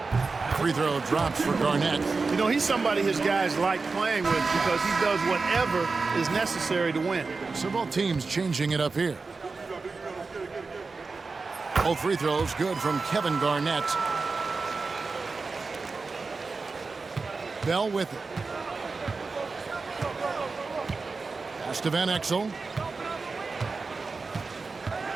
free throw drops for Garnett. You know, he's somebody his guys like playing with because he does whatever is necessary to win. So both teams changing it up here. Both free throws good from Kevin Garnett. Bell with it. Pass to Van Exel.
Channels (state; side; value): quieter; left; 4.2 dB